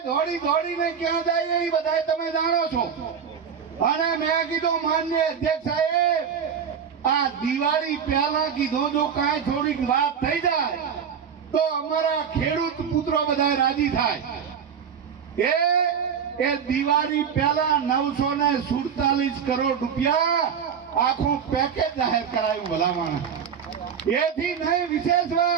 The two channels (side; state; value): left; quieter; 7.3 dB